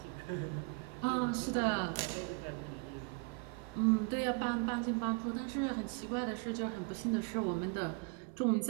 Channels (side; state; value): left; quieter; 31.5 dB